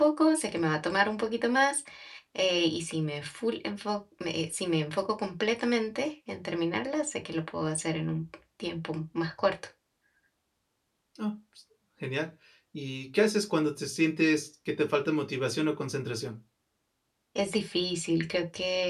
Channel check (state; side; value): identical; both; correlation 1.00